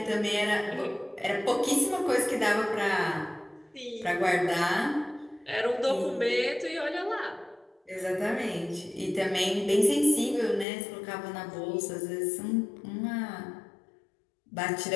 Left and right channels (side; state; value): right; drops out; at 10.7 s